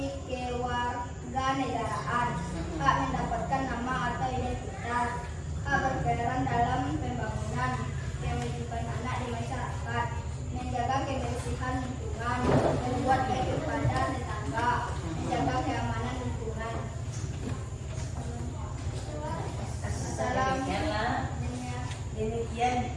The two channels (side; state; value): both; identical; correlation 1.00